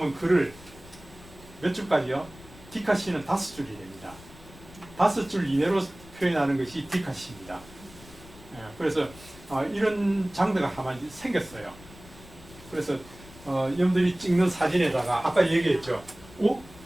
글을 몇 줄까지요? 디카시는 5줄이 됩니다. 5줄 이내로 표현하는 것이 디카시입니다. 그래서 이런 장르가 하나 생겼어요. 그래서 여러분들이 찍는 사진에다가 아까 얘기했죠.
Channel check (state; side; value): noise; left; rumble, 20 dB below the sound